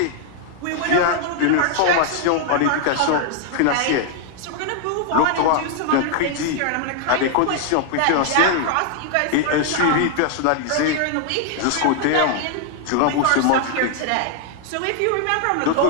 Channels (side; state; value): both; different; correlation 0.00